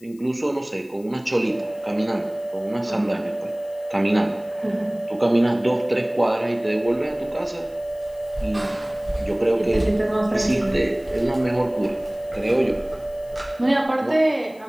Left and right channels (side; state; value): left; noise; hiss, 28 dB below the sound